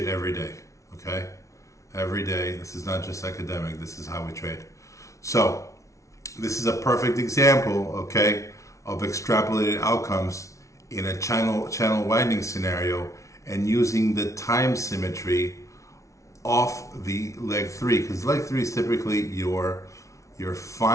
every day, okay? Every day. This is not just academic. This is how we trade. So this is a perfect example, okay, of extrapolated outcomes in a channel widening scenario and using the time symmetry off the leg 3, because leg 3 is typically your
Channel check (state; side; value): late; right; 0.15 ms